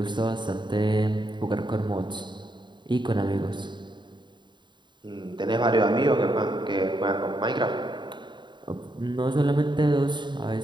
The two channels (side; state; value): left; late; 0.22 ms